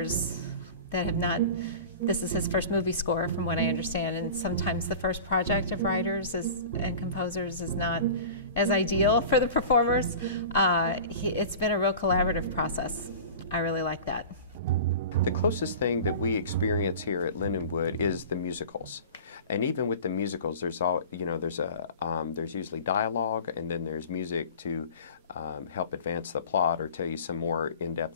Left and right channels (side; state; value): both; inverted; correlation -0.37